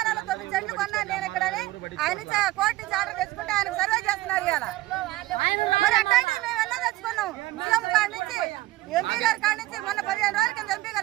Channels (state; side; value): quieter; left; 18.0 dB